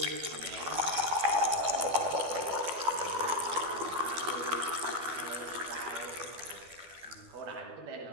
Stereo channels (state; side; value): late; left; 12 ms